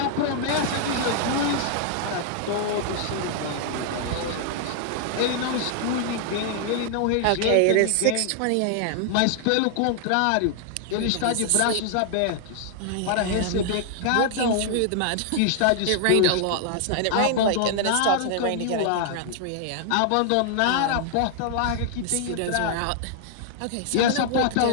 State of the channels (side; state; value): both; different; correlation 0.00